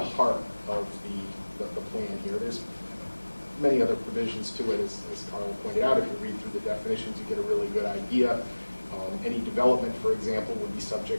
heart of the plan here. There's many other provisions to it, as Carla pointed out. If you read through the definitions, you get a really good idea. Any development, for example, would be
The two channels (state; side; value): inverted; both; correlation -1.00